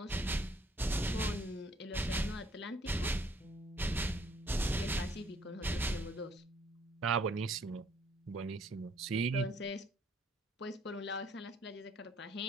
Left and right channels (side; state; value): both; normal; correlation 0.63